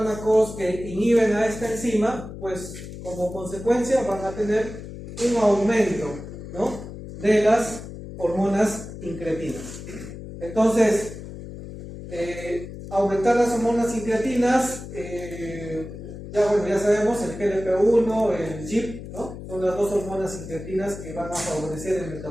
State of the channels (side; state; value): left; noise; hum, 11 dB below the sound